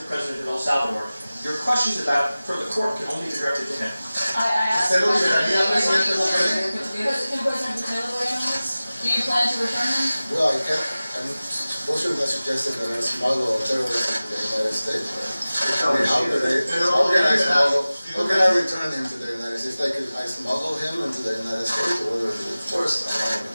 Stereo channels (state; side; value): inverted; both; correlation -0.97